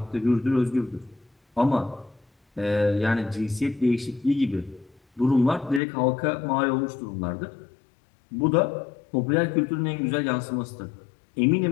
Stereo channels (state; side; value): drops out; right; at 5.8 s